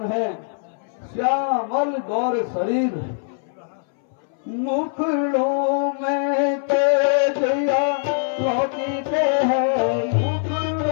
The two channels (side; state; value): right; silent; 62 dB below the other